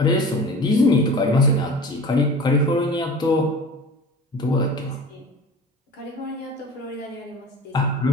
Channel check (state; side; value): normal; both; correlation 0.38